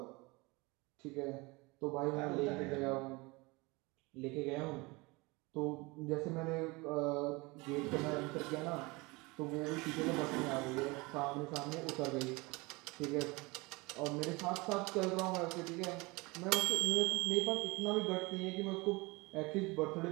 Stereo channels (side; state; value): left; quieter; 24.8 dB